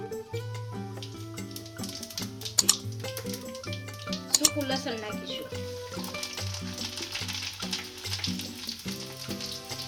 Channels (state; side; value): identical; both; correlation 1.00